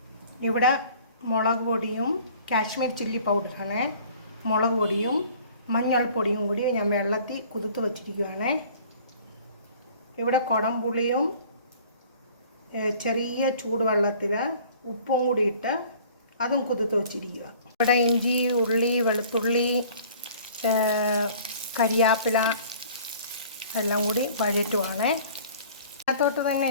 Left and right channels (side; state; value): both; inverted; correlation -0.50